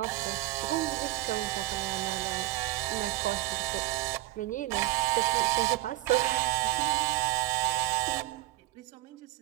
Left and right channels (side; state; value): left; quieter; 17.7 dB